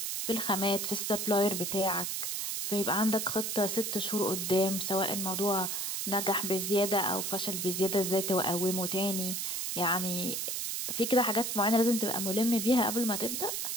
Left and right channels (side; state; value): right; noise; hiss, 2 dB below the sound